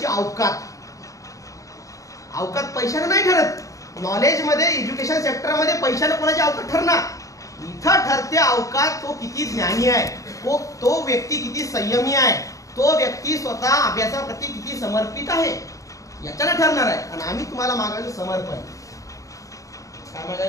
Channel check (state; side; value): late; right; 0.16 ms